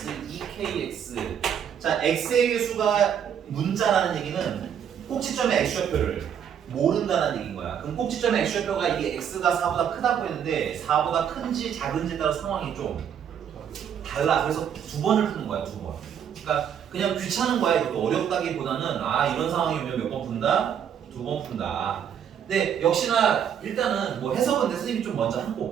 2kx. 자, x의 개수가 문자라는 얘기는 꼭지점의 x좌표를 모른다는 얘기인 거야. 그럼 꼭지점의 x좌표가 이게 x가 4보다 크다고 했는데 4보다 큰지 작은지에 따라 상황이 좀 달라. 그래서 두 번을 푸는 거야, 두 번. 그러니까 그냥 귀찮은 거야. 이것도 어렵다기보다는 아 이런 상황이 오면 몇 번 푼다? 두 번 푼다. 근데 역시나 일단은 뭐 해석은 내 선생님이 좀 먼저 한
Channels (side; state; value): left; quieter; 8.5 dB